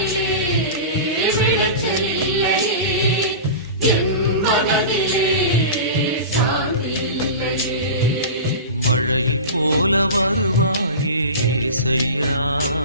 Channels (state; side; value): inverted; both; correlation -0.30